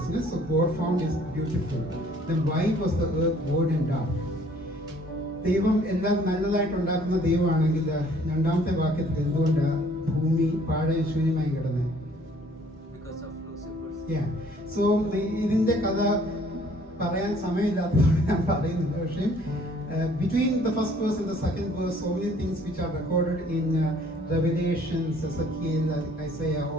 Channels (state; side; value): normal; both; correlation 0.58